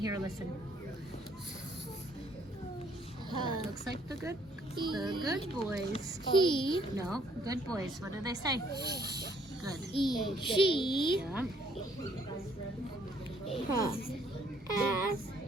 a listen. That looks like the good boys. No, good boys. What do they say? Good. She Yeah.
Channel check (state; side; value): normal; both; correlation 0.65